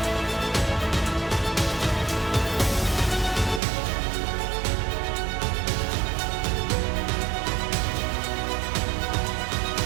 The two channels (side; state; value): left; drops out; at 3.6 s